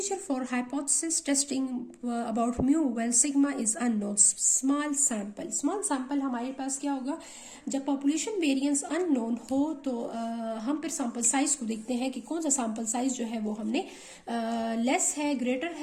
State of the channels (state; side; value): identical; both; correlation 1.00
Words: for hypothesis testing about mu when sigma is unknown small sample हमारे पास क्या होगा जब पॉपुलेशन वेरिएंस अननोन हो तो हम फिर सैंपल साइज को देखते हैं कि कौन सा सैंपल साइज जो है वो हमने लेस है ग्रेटर